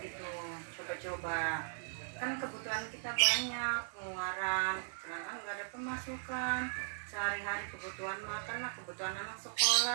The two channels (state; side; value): silent; left; digital silence